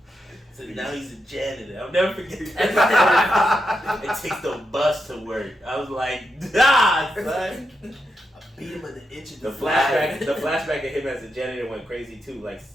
So now he's a janitor. I'll never forget that. It takes the bus to work. I was like, son. I beat him in the inch of The flashback of him as a janitor went crazy too. Like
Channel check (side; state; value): both; normal; correlation 0.85